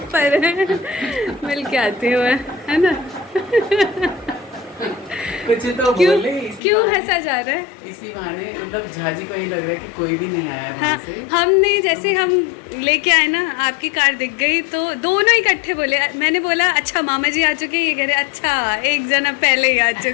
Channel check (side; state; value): right; drops out; at 6.6 s